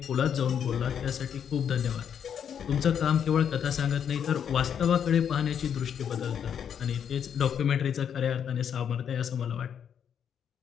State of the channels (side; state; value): right; quieter; 8.2 dB